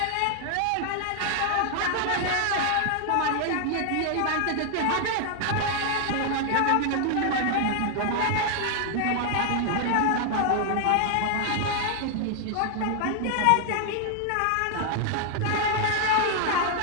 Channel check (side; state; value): both; different; correlation 0.00